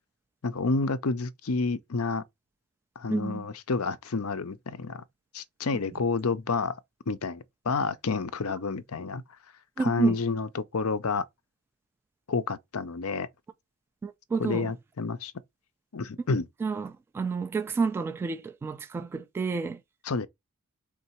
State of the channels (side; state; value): both; normal; correlation 0.30